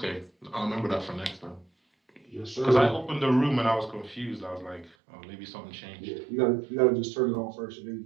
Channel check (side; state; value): left; drops out; at 5.0 s